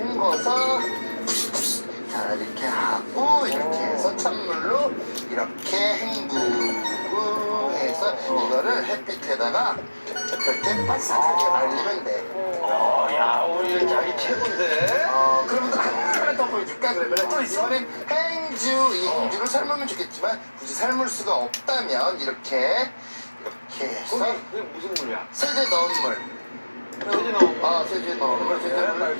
자 이렇게 하고 이렇게 해서 찬물로 이렇게 헹구고 해서 이거를 햇빛에다가 이렇게 바삭하게 말리면 돼. 야 우리 자기 최고인데. 그러면 하나 더 보여줄까? 그러면 또 있어? 이번엔 행주. 이 행주를 삶으면 좋겠지만 굳이 삶을 수가 없다면 이렇게 해서 그게 무슨 물이야? 세제 넣은 물. 세제 넣은 물. 세제 넣은 물. 세제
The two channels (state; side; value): inverted; both; correlation -1.00